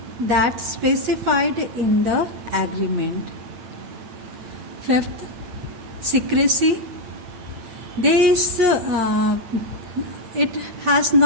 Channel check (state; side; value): late; left; 8.8 ms